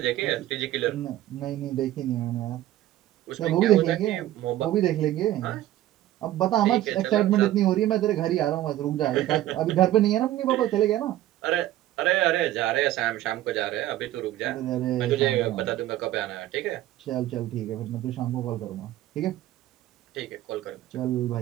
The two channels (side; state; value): left; quieter; 14.1 dB